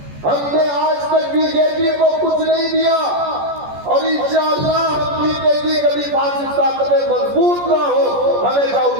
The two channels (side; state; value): left; late; 14 ms